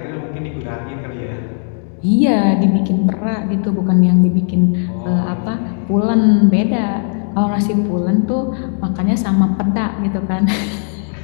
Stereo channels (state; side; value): silent; right; 60 dB below the other